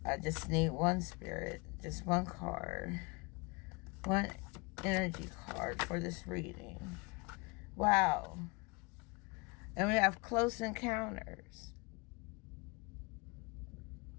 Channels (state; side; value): quieter; right; 27.5 dB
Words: just need one spirit, just one card, one energy card for this reading. Wow. And we have close encounters.